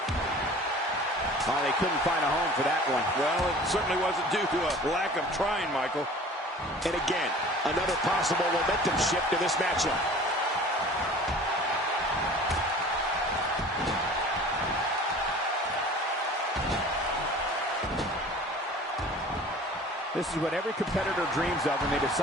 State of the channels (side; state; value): both; normal; correlation 0.44